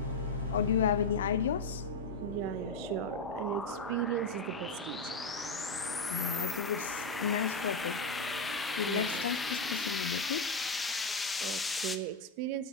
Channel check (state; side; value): quieter; right; 3.0 dB